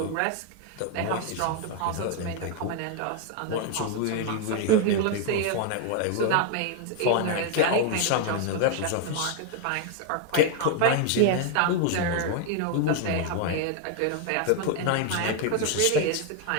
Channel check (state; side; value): different; both; correlation 0.01